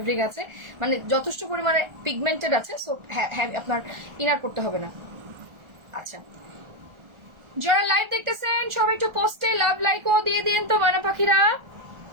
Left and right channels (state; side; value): late; left; 1.4 ms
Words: আছে, মানে যথেষ্ট পরিমাণে পিগমেন্টেড আছে, সো আপনার ইনার পড়তে হবে না। আচ্ছা যারা লাইভ দেখতেছেন সবাই একটু পোস্টে লাভ লাইক ও দিয়ে দিন তো ময়না পাখিরা।